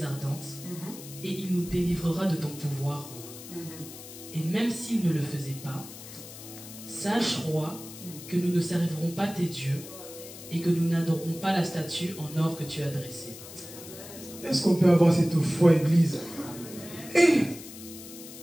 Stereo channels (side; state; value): left; noise; hiss, 14 dB below the sound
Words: ardente, et il nous délivrera de ton pouvoir, roi. Et même s'il ne le faisait pas, sache, roi, que nous ne servirons pas tes dieux, et que nous n'adorerons pas la statue en or que tu as dressée. Est-ce qu'on peut avoir cette foi, Église?